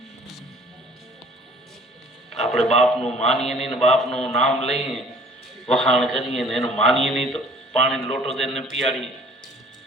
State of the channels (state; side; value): normal; both; correlation 0.52